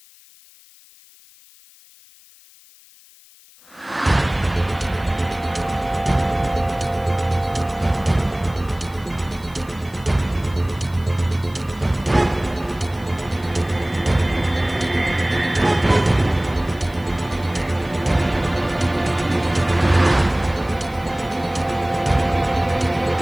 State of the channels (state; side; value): noise; left; hiss, 25 dB below the sound